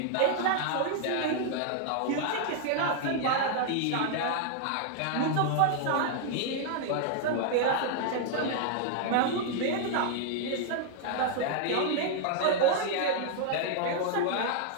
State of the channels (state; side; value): different; both; correlation 0.00